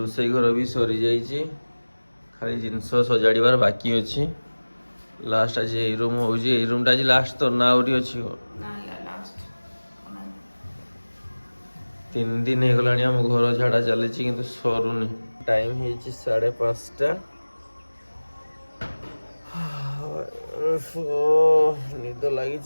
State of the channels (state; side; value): inverted; both; correlation -1.00